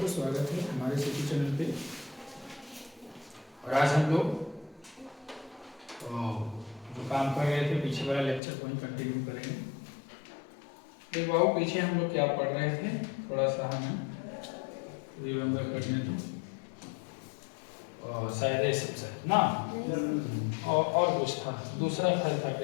स्वागत है हमारे सिटी चैनल पे। और आज हम लोग जो काम कर रहे थे पीछे वाला लेक्चर को ही कंटिन्यू करेंगे। एक बाबू पीछे हम लोग क्या पढ़ रहे थे, थोड़ा सा हमें रिमेम्बर करने दो। शायद ये सबसे ना और कुछ था, दूसरा फल था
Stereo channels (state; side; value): drops out; right; at 8.4 s